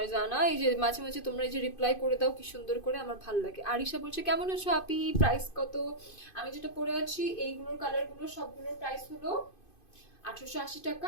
এই যে মাঝে মাঝে তোমরা এই যে রিপ্লাই করে দাও কি সুন্দর করে, আমার ভালো লাগে। আরিশা বলছে কেমন আছো আপি, প্রাইস কত? আমি যেটা পরে আছি এইগুলোর কালারগুলো সবগুলোর প্রাইস হলো 1880 টাকা।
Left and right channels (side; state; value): right; late; 2.5 ms